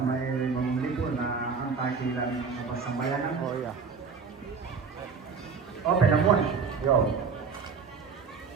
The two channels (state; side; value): quieter; left; 5.4 dB